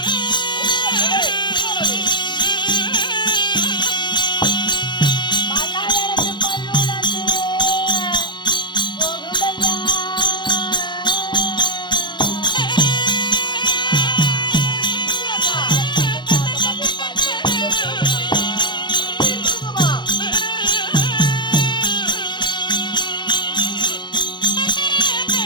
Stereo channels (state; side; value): late; right; 0.22 ms